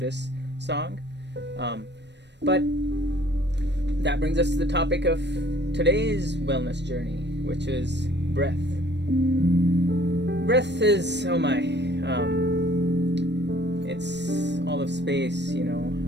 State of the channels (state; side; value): late; left; 0.50 ms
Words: song. But that brings us to the topic of today's wellness journey, which is breath. Breath is, it's all of space,